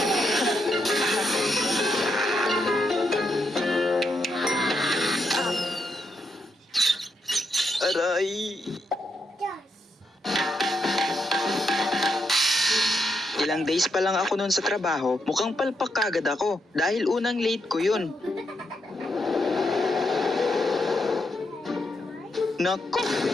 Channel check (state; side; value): normal; both; correlation 0.81